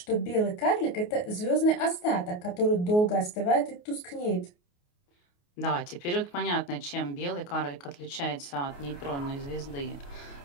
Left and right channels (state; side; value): late; right; 28 ms